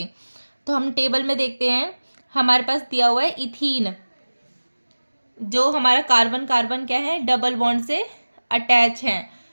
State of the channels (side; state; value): both; inverted; correlation -1.00